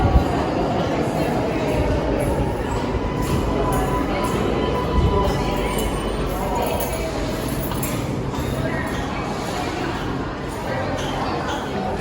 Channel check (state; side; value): identical; both; correlation 1.00